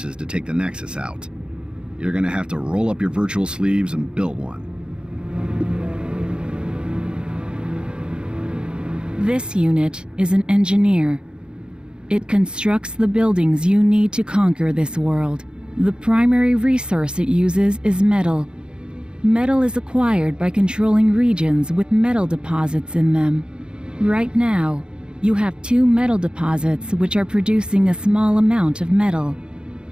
to take the nexus out. You're gonna have to roll up your virtual sleeves and build one. This unit is an engineer. It constructs the buildings you need to conquer this world. The primary resource it uses is metal. Metal is acquired by controlling regions with metal deposits in them. Right now, you have 2 metal deposits which are producing a small amount of metal,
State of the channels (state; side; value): late; left; 0.050 ms